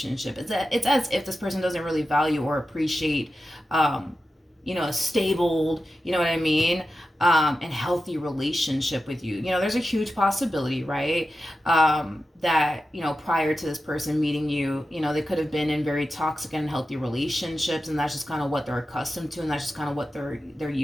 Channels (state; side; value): normal; both; correlation 0.92